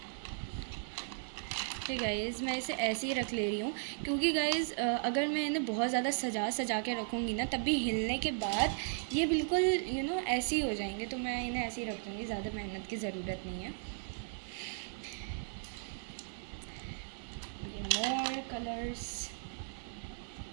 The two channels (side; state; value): left; silent; 54 dB below the other